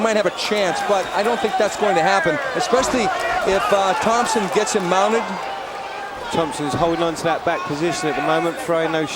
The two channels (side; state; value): both; identical; correlation 1.00